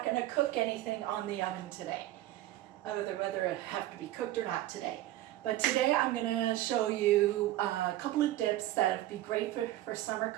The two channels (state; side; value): quieter; left; 14.9 dB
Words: gonna cook anything on the oven today. Whether it have to be cooked or not today. But today I'm gonna show you a couple of dips that would be great for summer